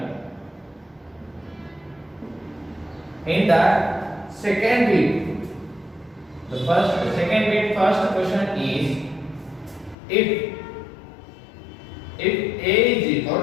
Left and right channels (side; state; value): right; drops out; at 10.0 s